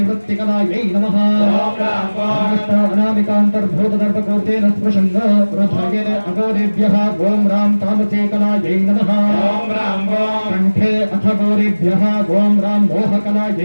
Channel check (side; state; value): both; inverted; correlation -1.00